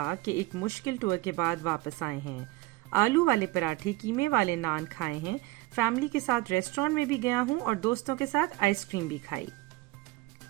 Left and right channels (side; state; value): left; quieter; 19.7 dB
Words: کہ ایک مشکل ٹور کے بعد واپس آئے ہیں۔ آلو والے پراٹھے، قیمے والے نان کھائے ہیں، فیملی کے ساتھ ریسٹورانٹ میں بھی گیا ہوں اور دوستوں کے ساتھ آئس کریم بھی کھائی۔